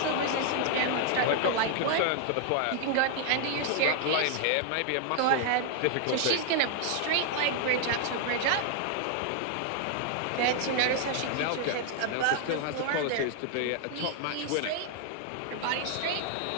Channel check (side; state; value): both; different; correlation 0.00